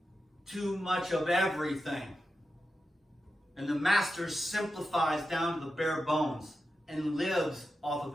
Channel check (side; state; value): both; normal; correlation 0.90